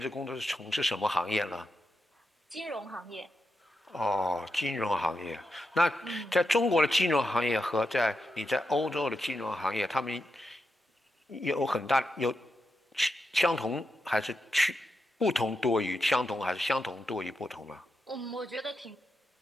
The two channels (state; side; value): normal; both; correlation 0.87